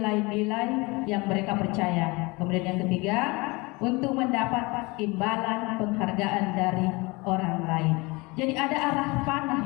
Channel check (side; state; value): right; quieter; 25.4 dB